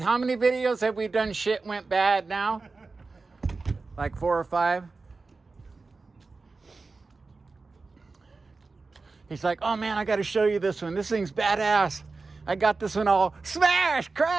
many videos have we done shit went bad now? Like 4 or 5? He's like, oh man, I got to show you this one. This thing's badass. I got this one all smash,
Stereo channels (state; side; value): quieter; left; 3.9 dB